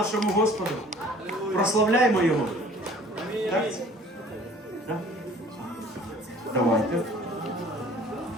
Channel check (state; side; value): normal; both; correlation 0.51